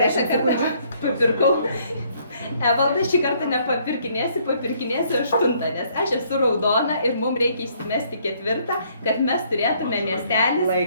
kartą papirkau. Evaldas šį kartą nepapirkinėsi, papirkinėsi 8, nes aš esu raudona ir mums reikia įsimesti 4, kad mes turėtume miestelį.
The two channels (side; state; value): both; inverted; correlation -0.66